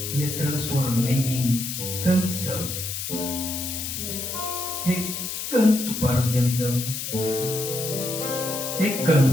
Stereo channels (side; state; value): left; noise; hiss, 5 dB below the sound